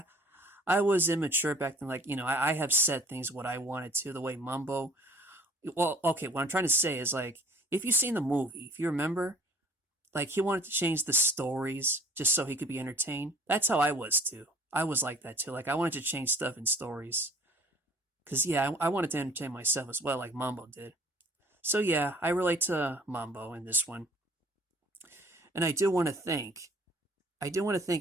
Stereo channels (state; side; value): normal; both; correlation 0.51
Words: I was immature back then. Like, I have said things what I wanted to, the way Mambo. Well, okay, what I'm trying to say is, like, if you've seen the movie, if you remember, like, he wanted to change the stories just so he could be entertained. That's how I was too. I was like that too. Like, I wanted to change stuff in stories. Because, yeah, I wanted to entertain myself as well, like Mambo did. So, yeah, I relate to Mambo in this one. And I do want to thank